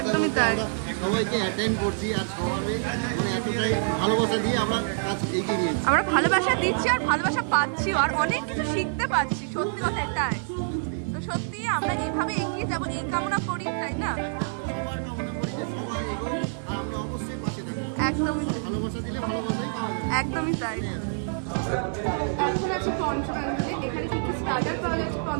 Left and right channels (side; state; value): left; silent; digital silence